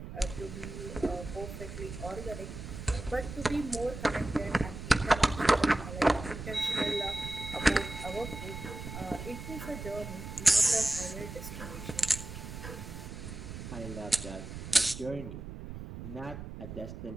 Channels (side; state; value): right; noise; rumble, 9 dB below the sound